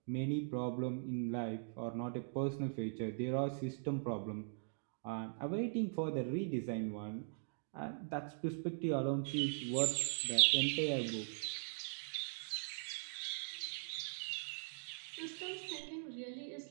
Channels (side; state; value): left; silent; digital silence